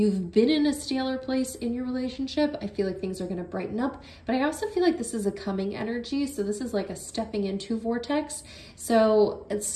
been in a staler place in your relationship, I feel like things are going to brighten up. But I also feel like this is a coming energy. So this is like a stepping into vortex. So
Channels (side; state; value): both; identical; correlation 1.00